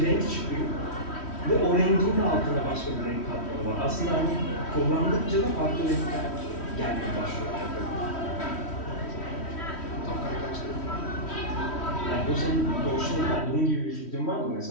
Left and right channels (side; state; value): right; late; 3.1 ms